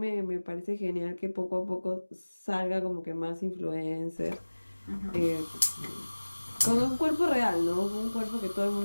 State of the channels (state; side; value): inverted; both; correlation -1.00